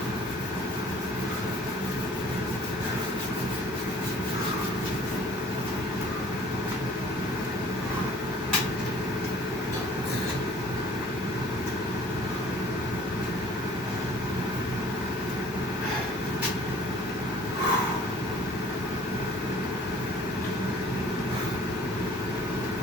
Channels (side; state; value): both; normal; correlation 0.51